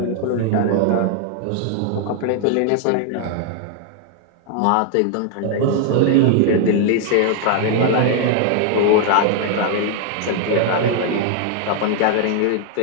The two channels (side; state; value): both; different; correlation 0.00